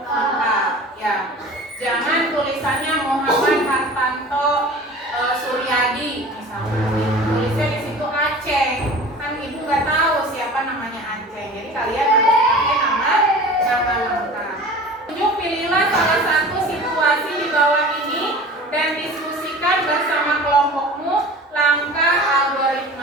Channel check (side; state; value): both; normal; correlation 0.40